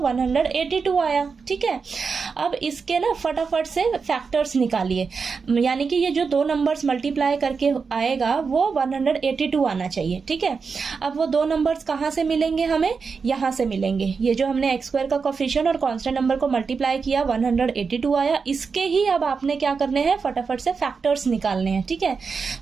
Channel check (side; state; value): left; quieter; 5.2 dB